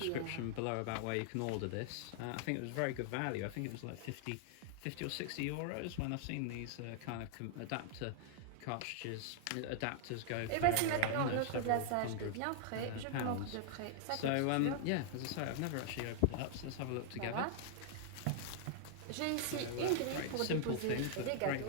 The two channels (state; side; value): different; both; correlation -0.01